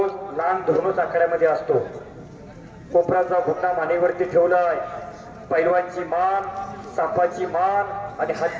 लांब धरूनच आखाड्यामध्ये असतो। कोपराचा घोटणा मानेवरती ठेवलाय। पैलवानची मान, सापाची मान आणि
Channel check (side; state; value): both; identical; correlation 1.00